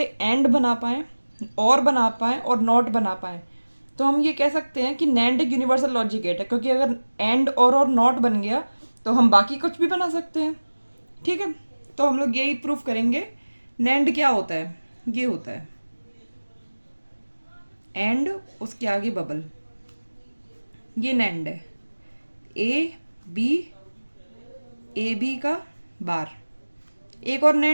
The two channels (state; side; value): inverted; both; correlation -1.00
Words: एंड बना पाएँ, और बना पाएँ, और नॉट बना पाएँ। तो हम ये कह सकते हैं कि नैंड एक यूनिवर्सल लॉजिक गेट है, क्योंकि अगर एंड और नॉट बन गया तो हम बाकी कुछ भी बना सकते हैं। ठीक है, तो हम लोग यही प्रूफ करेंगे। नैंड क्या होता है? ये होता है एंड, उसके आगे बबल, ये नैंड है। ए बी का बार। एक और